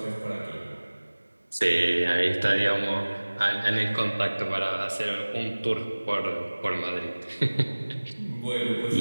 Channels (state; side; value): inverted; both; correlation -1.00